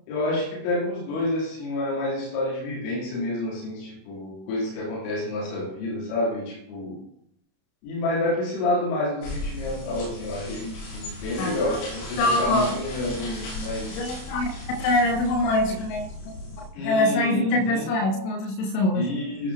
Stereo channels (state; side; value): late; right; 32 ms